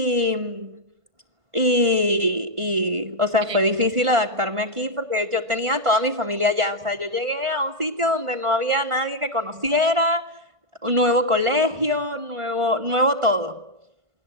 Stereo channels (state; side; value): late; left; 1.5 ms